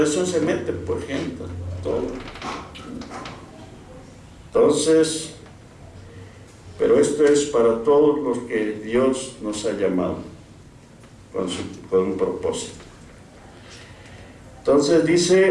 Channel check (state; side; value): identical; both; correlation 1.00